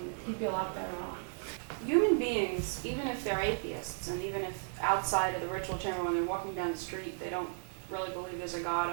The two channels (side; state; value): left; silent; digital silence